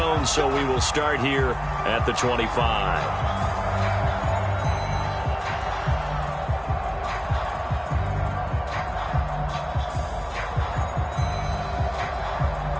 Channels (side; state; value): both; identical; correlation 1.00